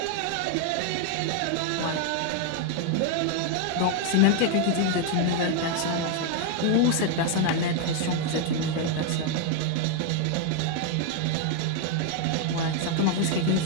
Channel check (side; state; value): both; different; correlation 0.00